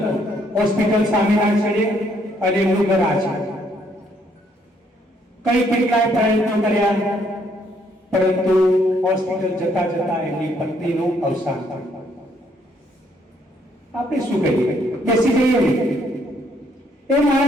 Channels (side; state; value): both; normal; correlation 0.69